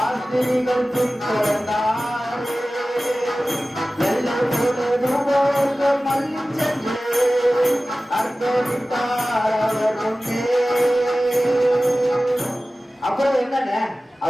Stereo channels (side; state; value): both; normal; correlation 0.96